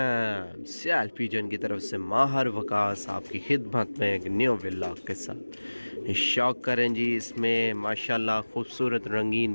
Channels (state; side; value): inverted; both; correlation -1.00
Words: सियाल पिजन की तरफ से माहर वकास आपकी खिदमत में एक न्यू व्लॉग के साथ शौक करें जी। इसमें माशाल्लाह खूबसूरत